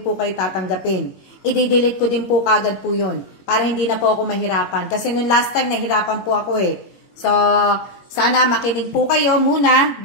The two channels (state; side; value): late; right; 21 ms